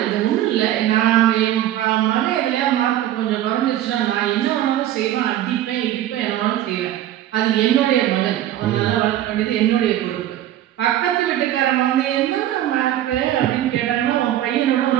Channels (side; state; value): left; quieter; 12.8 dB